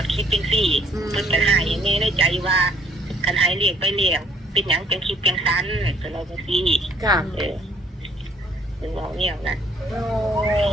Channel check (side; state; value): both; normal; correlation 0.62